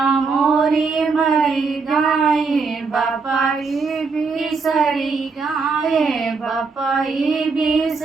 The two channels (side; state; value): left; quieter; 4.6 dB